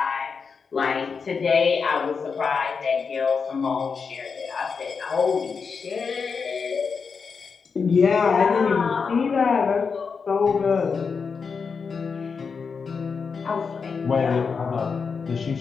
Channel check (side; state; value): right; quieter; 5.5 dB